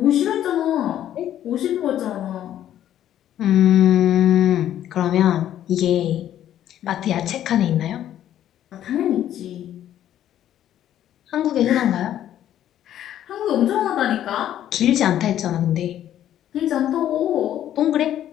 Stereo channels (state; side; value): quieter; right; 11.5 dB